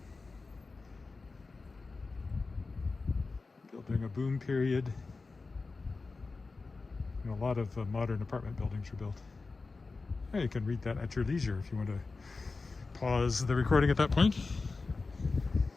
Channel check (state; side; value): quieter; right; 3.9 dB